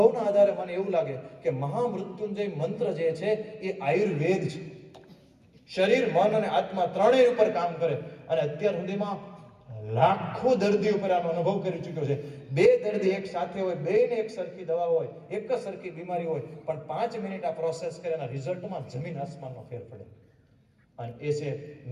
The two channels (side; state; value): both; identical; correlation 1.00